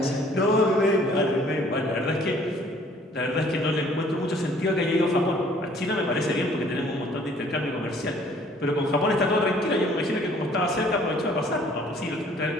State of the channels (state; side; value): normal; both; correlation 0.57